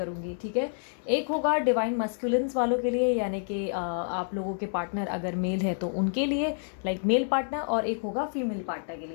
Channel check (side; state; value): right; silent; digital silence